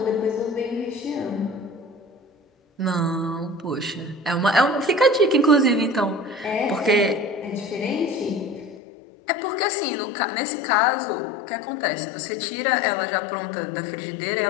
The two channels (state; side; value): drops out; right; at 8.8 s